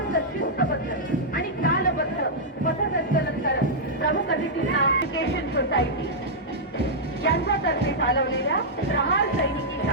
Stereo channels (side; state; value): both; normal; correlation -0.08